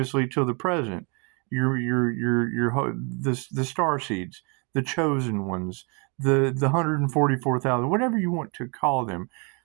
till the present. The star seeds, the chosen ones, the 144,000, whatever you want to call them.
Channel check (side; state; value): left; quieter; 33.7 dB